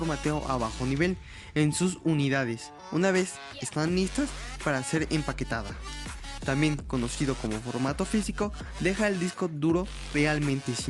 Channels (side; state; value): both; identical; correlation 1.00